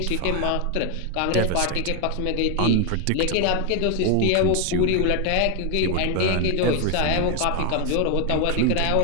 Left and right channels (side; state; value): both; different; correlation 0.01